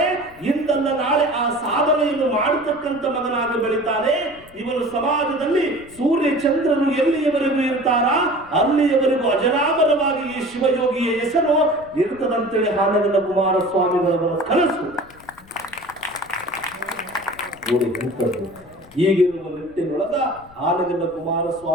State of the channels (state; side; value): noise; left; rumble, 25 dB below the sound